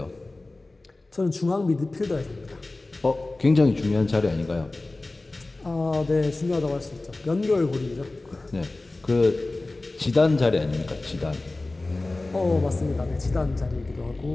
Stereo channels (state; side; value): quieter; right; 3.0 dB